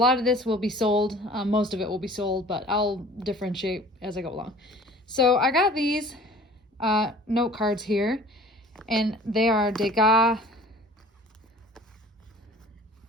of this will be sold, most of it will be sold, but I'll differentiate as I go along. So I got these note cards here, and they are Degas,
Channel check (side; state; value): both; normal; correlation 0.47